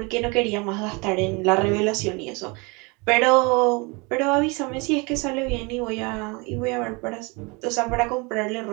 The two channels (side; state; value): left; quieter; 28.5 dB